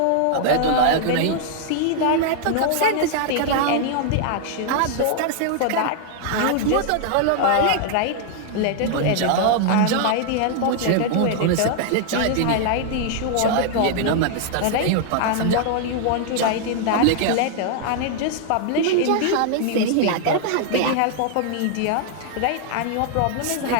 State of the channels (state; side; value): different; both; correlation -0.01